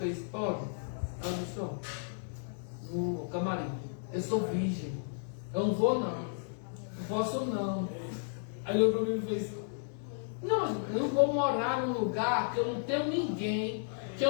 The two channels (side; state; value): right; silent; digital silence